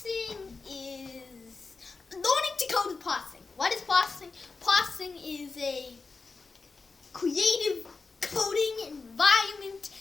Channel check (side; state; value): right; quieter; 4.3 dB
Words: is learning to code with processing. What is processing? Processing is a creative coding environment